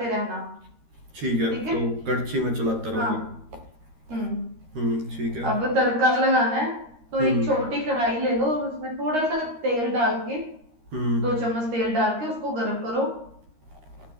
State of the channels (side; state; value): left; late; 13 ms